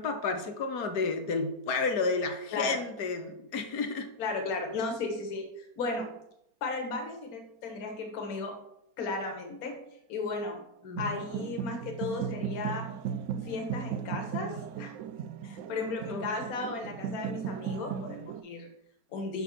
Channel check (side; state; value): right; late; 4.3 ms